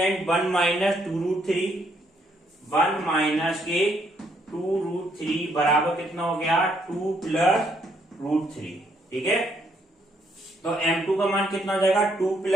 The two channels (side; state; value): both; normal; correlation 0.72